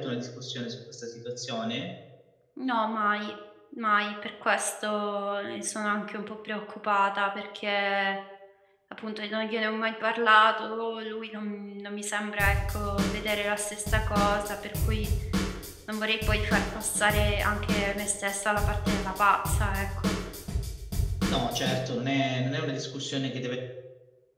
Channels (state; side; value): identical; both; correlation 1.00